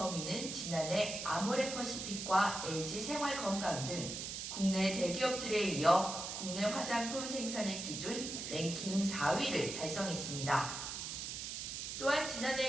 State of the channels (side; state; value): right; noise; hiss, 5 dB below the sound